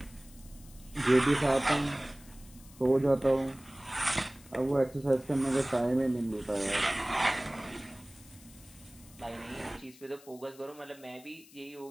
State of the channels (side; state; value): left; noise; hiss, 23 dB below the sound